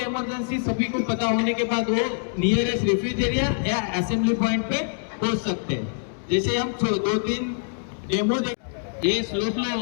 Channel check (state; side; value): silent; right; digital silence